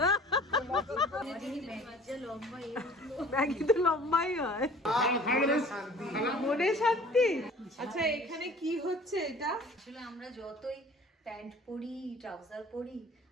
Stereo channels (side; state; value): both; normal; correlation 0.49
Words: ম্যাগি তো লম্বাই হয়, মনে শান্তি। আচ্ছা এখানে কি হচ্ছে এটা? আসলে আমরা যতই প্যান্ট পরি ট্রাউজার পরি